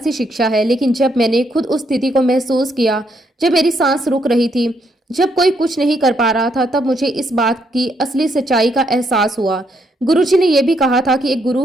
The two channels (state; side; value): normal; both; correlation 0.75